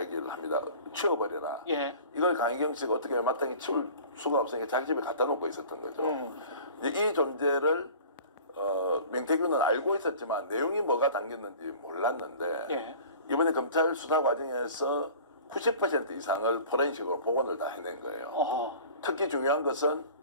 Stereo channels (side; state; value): both; inverted; correlation -0.43